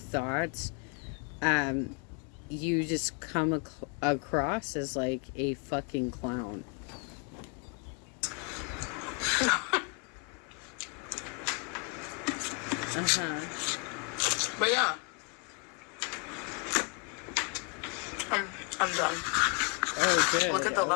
you just come across as like a fucking clown. But yeah, I'm done. Oh, good. Look at the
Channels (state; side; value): quieter; right; 35.2 dB